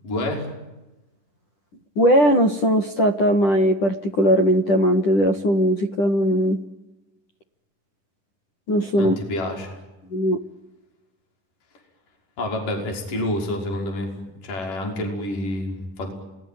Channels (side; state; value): right; late; 10 ms